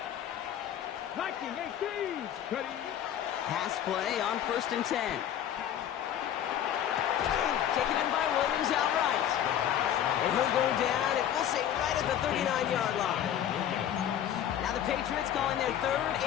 19, 18. Ready. Pass play on 1st and 10. Taken in by Williams outright. And he'll go down, and we'll say right at the 39-yard line. Now the Patriots calling their third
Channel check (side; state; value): right; quieter; 10.4 dB